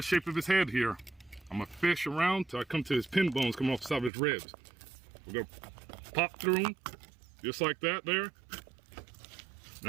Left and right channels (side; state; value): left; drops out; at 4.1 s